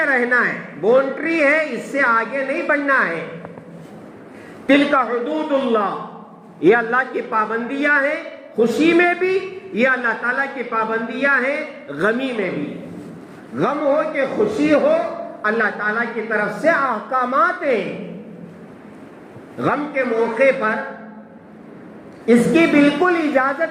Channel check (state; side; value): identical; both; correlation 1.00